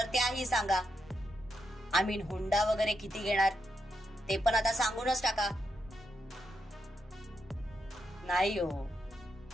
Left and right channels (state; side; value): normal; both; correlation 0.83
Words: त्याही सांगा. आम्ही हुंडा वगैरे किती घेणार ते पण आता सांगूनच टाका. नाही हो,